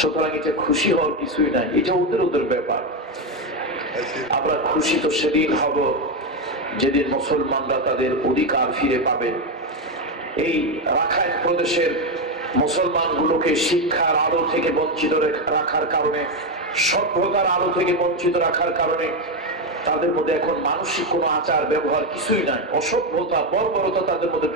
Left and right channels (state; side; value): normal; both; correlation 0.09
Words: এটা খুশি হওয়ার কিছুই নাই, এটা ওদের ওদের ব্যাপার। আমরা খুশি তো সেদিন হব যেদিন মুসলমানরা তাদের অধিকার ফিরে পাবে। এই রাখাইন প্রদেশের মুসলমানগুলোকে শিক্ষার আলো থেকে বঞ্চিত রাখার কারণে, সভ্যতার আলো থেকে বঞ্চিত রাখার কারণে তাদের মধ্যে এখন মানসিক কোনো আচার ব্যবহার কিছুই নাই। অসভ্যতা, বর্বরতা তাদের মধ্যে